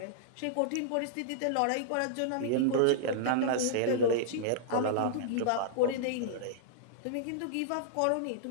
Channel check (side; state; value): both; different; correlation -0.02